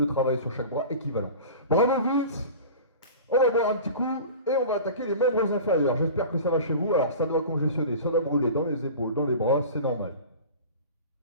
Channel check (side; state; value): both; inverted; correlation -0.36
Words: travail sur chaque bras équivalent. Bravo Vince! On va boire un petit coup et on va attaquer les membres inférieurs. J'espère que ça va chez vous. Alors ça doit congestionner, ça doit brûler dans les épaules, dans les bras, c'est normal.